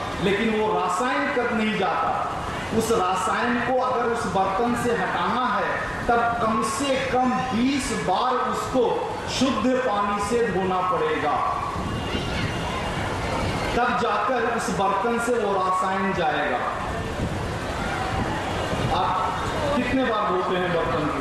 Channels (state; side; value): identical; both; correlation 1.00